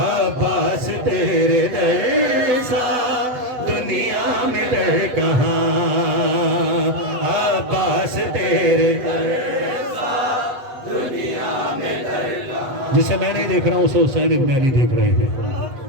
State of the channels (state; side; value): late; left; 8.0 ms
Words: तेरे जैसा दुनिया में दर कहाँ? अब्बास तेरे जिसे मैं नहीं देख रहा हूं उसे हुसैन इब्न अली देख रहे